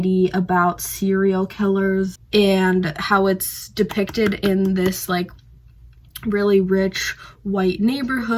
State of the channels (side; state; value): both; identical; correlation 1.00